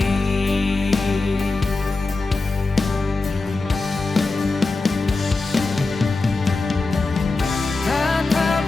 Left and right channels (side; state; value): right; quieter; 3.5 dB